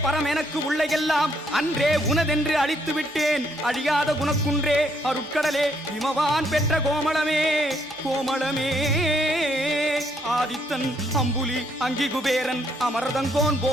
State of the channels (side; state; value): both; normal; correlation 0.71